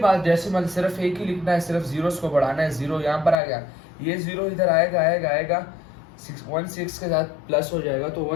डेसिमल सिर्फ एक ही लिखना है, सिर्फ जीरोस को बढ़ाना है, 0 यहाँ पर आ गया, ये 0 इधर आएगा 16 के साथ प्लस हो जाएगा, तो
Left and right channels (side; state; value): right; drops out; at 3.4 s